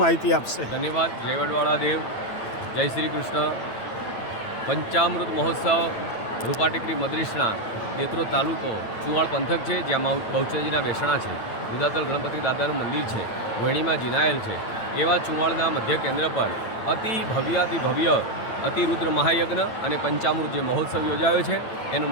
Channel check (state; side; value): late; right; 9.0 ms